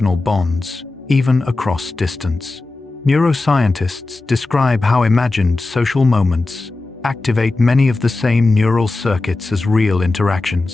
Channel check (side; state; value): right; quieter; 3.3 dB